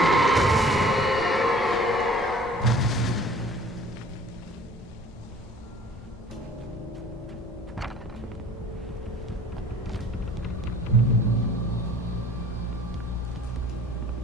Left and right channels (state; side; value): normal; both; correlation 0.50